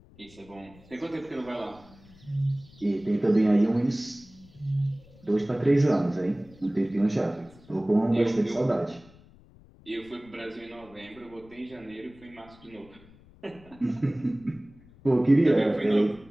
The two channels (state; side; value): noise; left; rumble, 25 dB below the sound